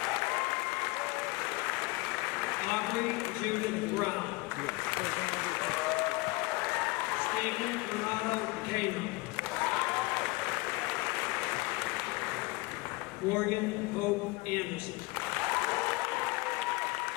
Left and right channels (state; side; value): quieter; right; 23.9 dB